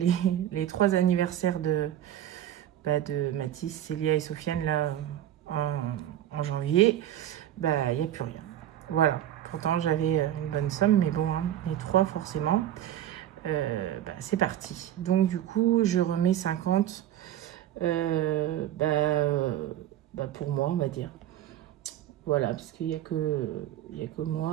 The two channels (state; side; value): quieter; left; 11.9 dB